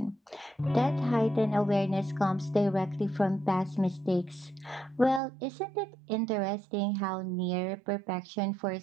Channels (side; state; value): left; drops out; at 5.2 s